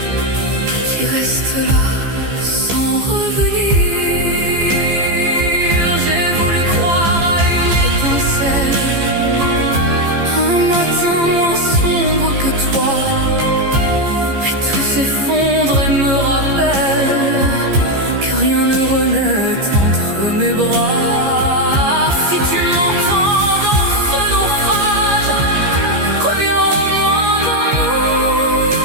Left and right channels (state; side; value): late; left; 15 ms